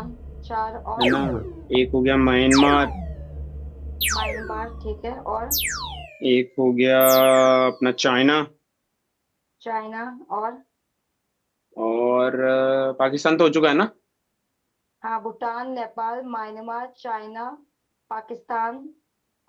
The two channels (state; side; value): identical; both; correlation 1.00